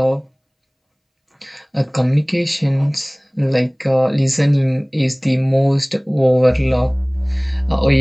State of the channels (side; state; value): both; identical; correlation 1.00